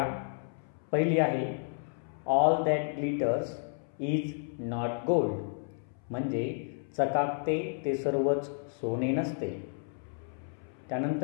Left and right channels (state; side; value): silent; right; 57 dB below the other